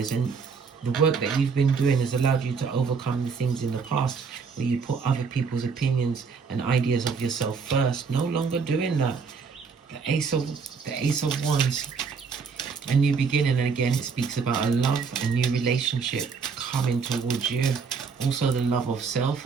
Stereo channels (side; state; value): left; quieter; 5.4 dB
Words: and the work that you've been doing has allowed you to overcome the things in the past where you put other people's opinions and ideas of yourself first. No longer doing that. The Ace of Wands, a new beginning. And again, it speaks about a love, a new relationship coming towards you. Also the love of self,